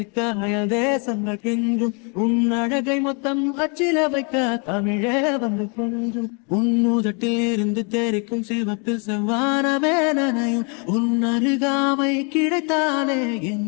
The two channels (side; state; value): right; quieter; 35.7 dB